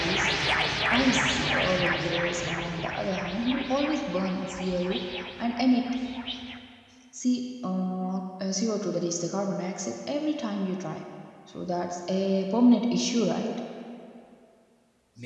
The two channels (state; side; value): identical; both; correlation 1.00